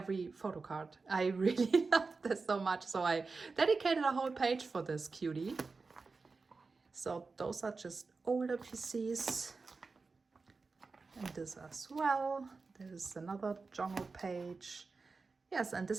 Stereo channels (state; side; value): quieter; left; 4.2 dB